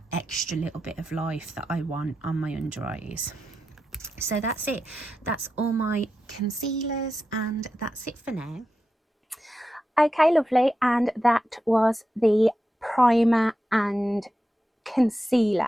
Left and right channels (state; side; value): normal; both; correlation 0.89